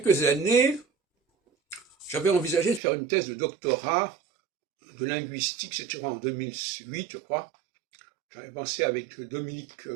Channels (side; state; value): left; drops out; at 2.8 s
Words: années, j'avais envisagé de faire une thèse de doctorat de linguistique, c'était en 2008, je crois. J'avais pensé avec Dominique